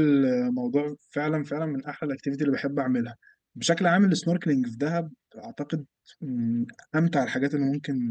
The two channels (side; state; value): both; identical; correlation 1.00